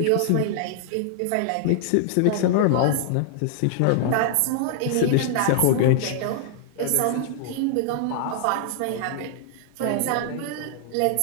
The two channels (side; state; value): both; different; correlation 0.00